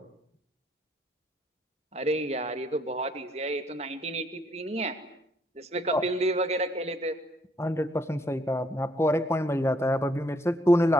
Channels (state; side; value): normal; both; correlation 0.68